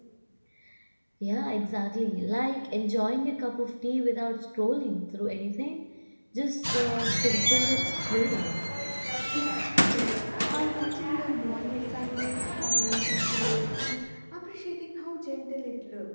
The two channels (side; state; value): both; inverted; correlation -1.00